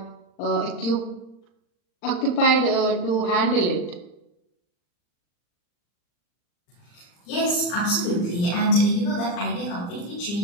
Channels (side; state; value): right; late; 40 ms